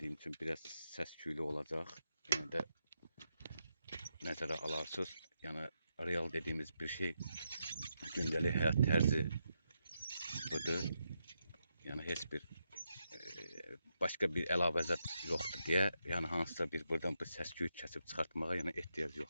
üçün biraz səs-küylü olacaq. Yəni də nəzərə alarsınız. Yəni real dediğimiz bir şey gündəlik həyat tərzi budur. Yəni heç bir başqa bir əlavə zət yoxdur deyə, yəni hansısa bir buradan bu səs-küy kəsib çıxartmağa yəni ehtiyac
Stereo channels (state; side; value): inverted; both; correlation -0.83